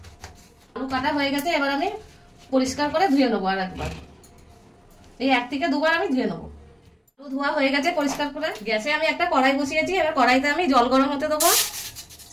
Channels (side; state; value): both; identical; correlation 1.00